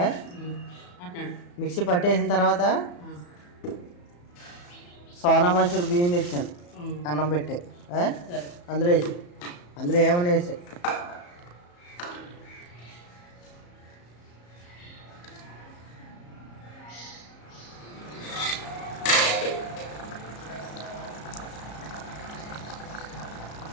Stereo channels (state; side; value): late; right; 34 ms